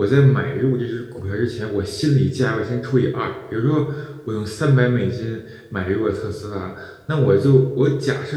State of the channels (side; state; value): both; identical; correlation 1.00